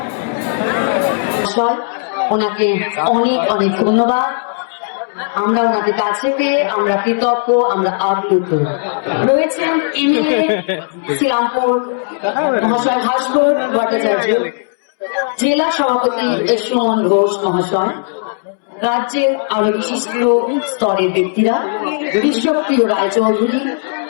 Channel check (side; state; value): right; silent; digital silence